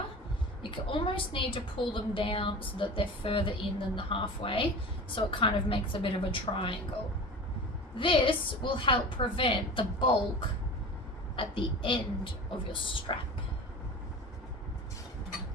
You can almost need to pull them down so that they're further in than the halfway, so it kind of makes a bit of a triangle. This will help prevent the bulk at the end of your strap.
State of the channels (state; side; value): normal; both; correlation 0.35